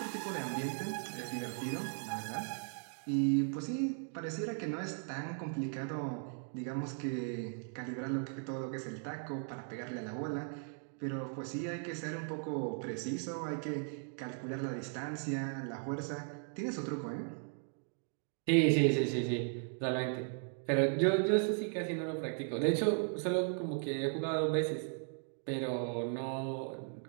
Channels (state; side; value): silent; left; 53 dB below the other